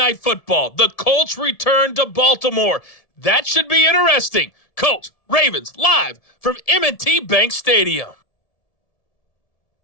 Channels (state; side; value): late; right; 1.7 ms